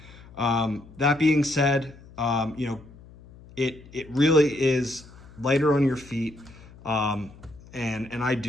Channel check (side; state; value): left; noise; hum, 21 dB below the sound